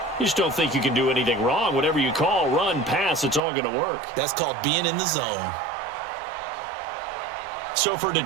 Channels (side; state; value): left; drops out; at 3.4 s